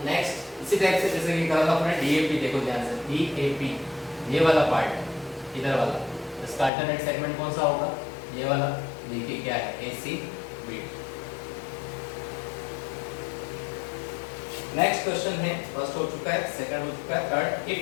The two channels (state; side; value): drops out; right; at 6.7 s